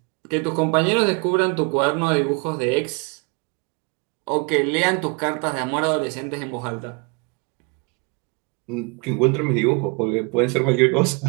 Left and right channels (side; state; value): left; quieter; 32.2 dB